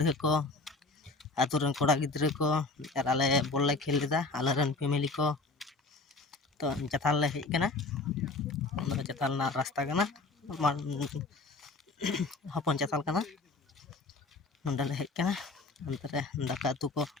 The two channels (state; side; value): quieter; right; 3.7 dB